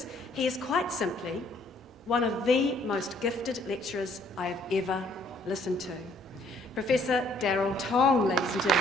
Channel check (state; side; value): normal; both; correlation 0.64